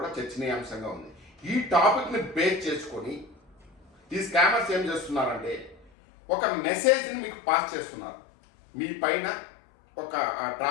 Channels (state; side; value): drops out; right; at 5.9 s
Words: చర్చనీయాంశంగా ఉంది. ఈ టాపిక్ని బేస్ చేసుకొని ఈ స్కామర్స్ ఏం చేస్తున్నారంటే ఒక మెసేజ్ని మీకు పాస్ చేస్తున్నారు. మీ పైన ఒక